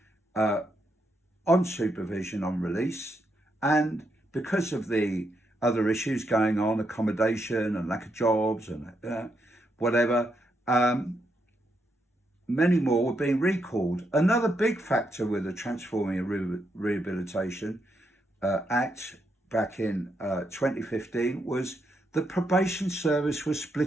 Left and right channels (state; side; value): normal; both; correlation 0.80